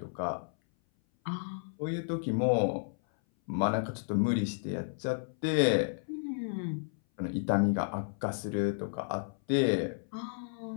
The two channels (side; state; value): right; silent; 56 dB below the other